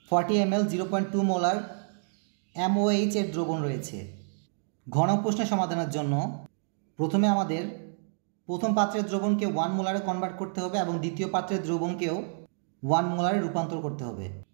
40 ml 0.2 মোলার MOH এর দ্রবণ রয়েছে, ঘ নং প্রশ্নের সমাধানের জন্য প্রথমে আমাদের প্রথম পাত্রের দ্রবণকে 1 মোলারে কনভার্ট করতে হবে এবং দ্বিতীয় পাত্রের দ্রবণকেও 1 মোলারে রূপান্তর করতে হবে।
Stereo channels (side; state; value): left; silent; digital silence